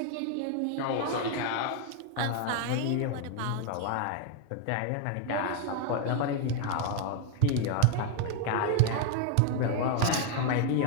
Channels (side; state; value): both; different; correlation 0.01